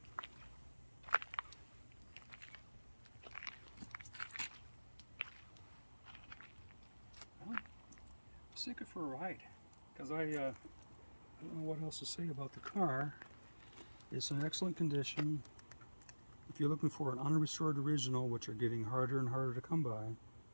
Take it for a ride, because I don't know what else to say about the car. It's in excellent condition. If you're looking for an unrestored original, which are getting harder and harder to come by,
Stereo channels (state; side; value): inverted; both; correlation -1.00